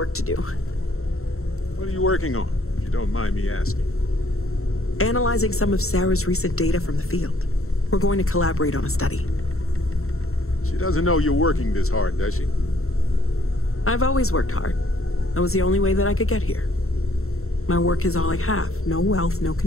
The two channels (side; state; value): right; late; 0.63 ms